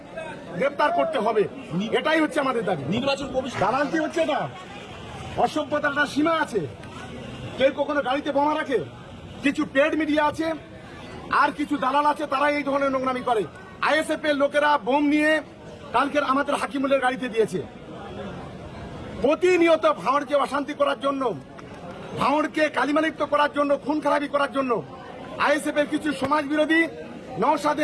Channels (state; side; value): identical; both; correlation 1.00